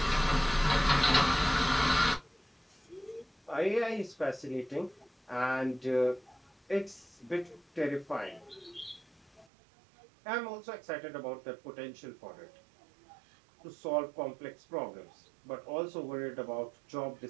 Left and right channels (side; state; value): left; drops out; at 9.5 s